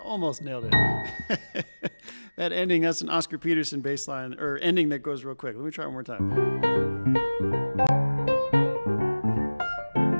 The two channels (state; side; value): inverted; both; correlation -1.00